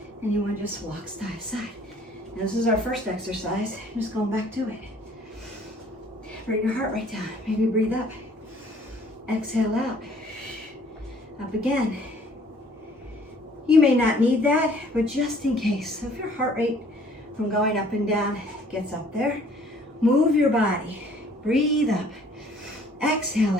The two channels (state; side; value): normal; both; correlation 0.57